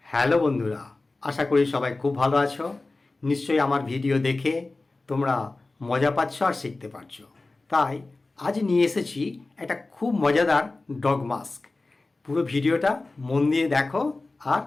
Hello বন্ধুরা, আশা করি সবাই খুব ভালো আছো। নিশ্চয়ই আমার ভিডিও দেখে তোমরা মজা পাচ্ছ আর শিখতে পারছো। তাই আজ নিয়ে এসেছি একটা খুব মজাদার ডগ মাস্ক। পুরো ভিডিওটা মন দিয়ে দেখো আর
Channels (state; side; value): quieter; right; 3.3 dB